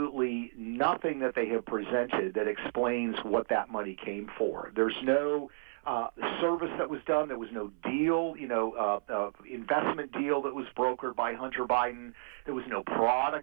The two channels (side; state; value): left; silent; 55 dB below the other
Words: nothing that they have presented that explains what that money came for. There's no service that was done. There was no deal, investment deal that was brokered by Hunter Biden. There was no